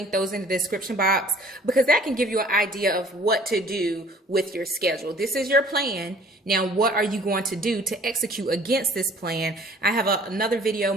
those in the description box, because that can give you an idea of what to do with your schedule. This is your plan. Now, what are you going to do to execute against this plan? I have another video,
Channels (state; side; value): normal; both; correlation 0.52